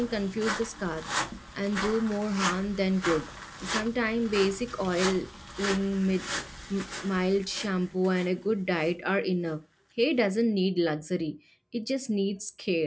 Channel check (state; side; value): identical; both; correlation 1.00